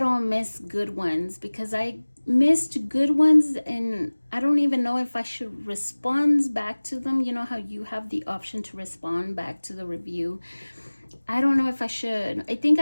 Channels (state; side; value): inverted; both; correlation -1.00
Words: miss good ones, because I missed good ones and I don't even know if I should respond back to them. You know how you have the option to respond back to the review? I don't know if I should. I think